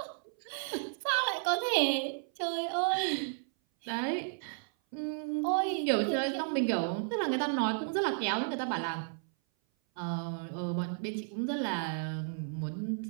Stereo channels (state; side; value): silent; left; 56 dB below the other